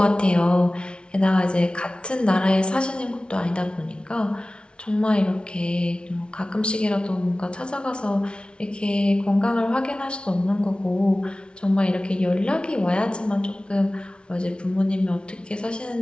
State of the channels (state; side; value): late; right; 0.057 ms